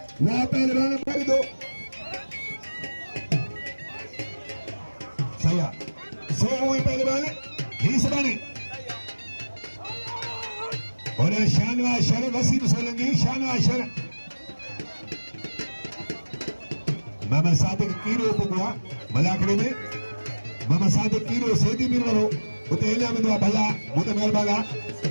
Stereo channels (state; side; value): inverted; both; correlation -1.00